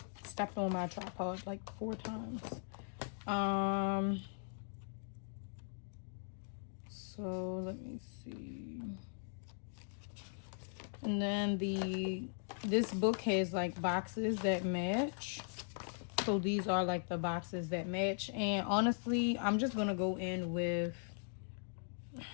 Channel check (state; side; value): silent; right; digital silence